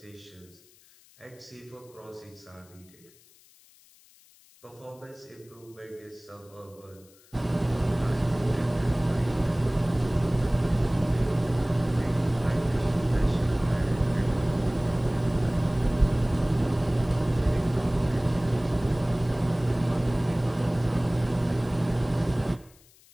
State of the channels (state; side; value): noise; left; hiss, 28 dB below the sound